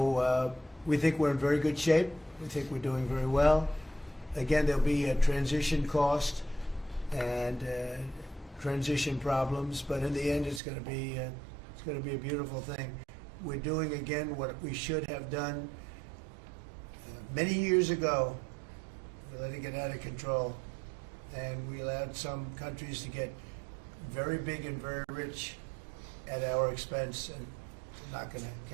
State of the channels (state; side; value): drops out; left; at 10.6 s